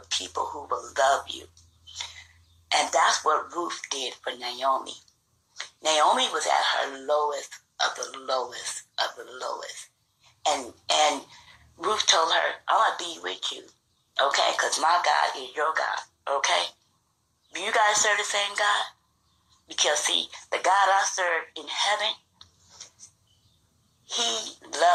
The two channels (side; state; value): both; identical; correlation 1.00